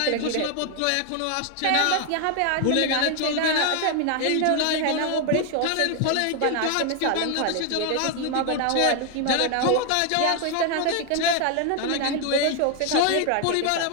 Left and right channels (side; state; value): both; different; correlation 0.00